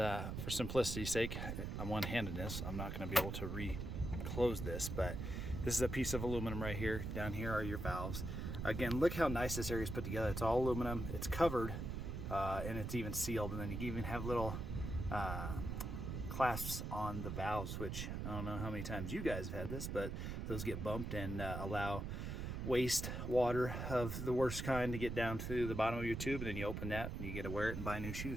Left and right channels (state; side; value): noise; right; rumble, 4 dB below the sound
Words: simplicity's sake, I'm one-handedness, I'm not going to be able to re-close this, but this is a piece of aluminum right here. Down here are your valves. Again, look how nice this area is put together. It's all aluminum, it's covered, and it's even sealed. And then you can even have little clasps on the valves, which I don't know how many times you guys have had this, but those get bumped and allow waste water of the worst kind to get down to the bottom of your tube, and then you open that and you get to wear it and buy new